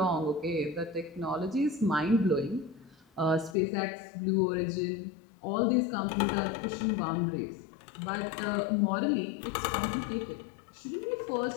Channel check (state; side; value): drops out; right; at 3.6 s